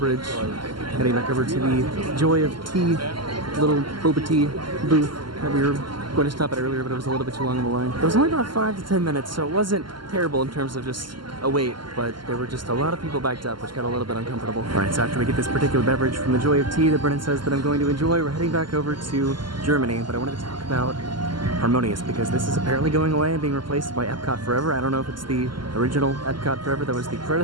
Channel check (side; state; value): left; late; 0.72 ms